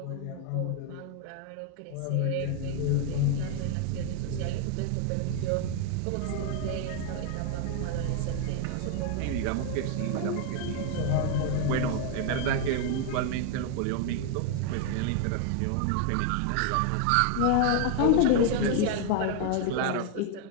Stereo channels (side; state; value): both; different; correlation 0.00